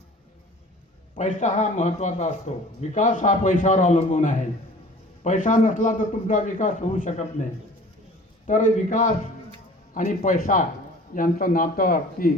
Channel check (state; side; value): normal; both; correlation 0.46